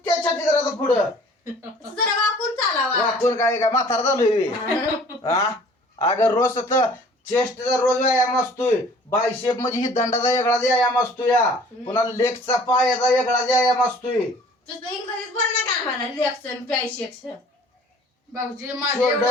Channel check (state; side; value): normal; both; correlation 0.51